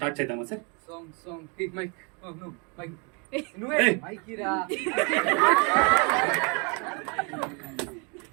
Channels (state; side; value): quieter; left; 33.4 dB